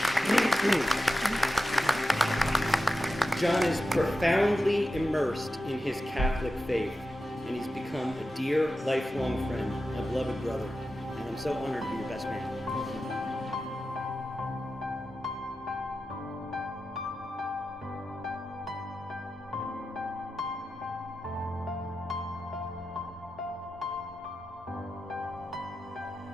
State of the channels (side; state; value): both; normal; correlation 0.91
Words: John is profoundly immersed in his Catholic faith, and he's become a dear, lifelong friend, a beloved brother, and I'm so honored to be your best man.